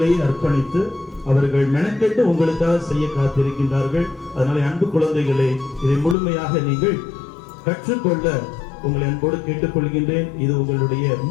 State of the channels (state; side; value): drops out; right; at 6.2 s